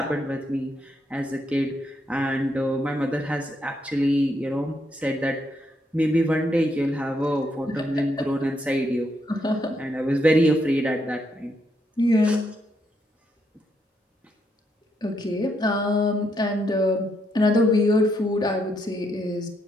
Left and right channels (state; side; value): normal; both; correlation 0.77